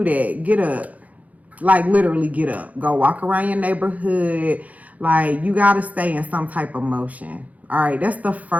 that? Get up. Like, literally get up, go walk around your neighborhood. Like, you got to stay in some type of motion. All right, that's the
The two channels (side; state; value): left; late; 0.073 ms